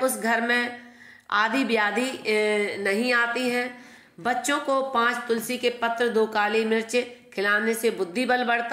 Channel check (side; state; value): both; identical; correlation 1.00